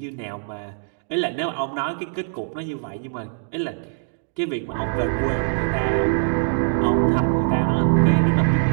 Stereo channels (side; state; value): left; silent; digital silence